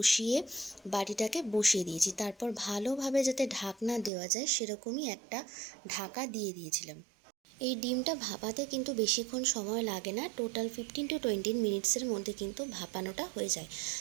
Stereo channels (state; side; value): drops out; left; at 4.1 s